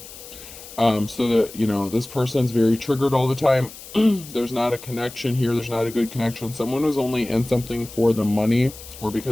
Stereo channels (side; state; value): left; noise; hiss, 16 dB below the sound